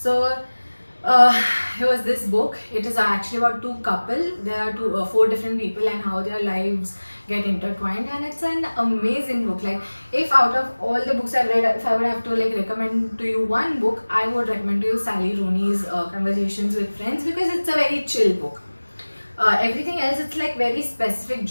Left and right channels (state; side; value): inverted; both; correlation -1.00